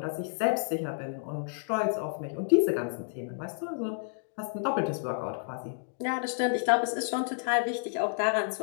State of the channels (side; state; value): right; silent; digital silence